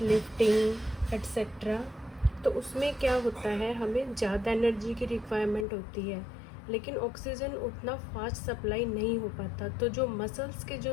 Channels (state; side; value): drops out; right; at 5.7 s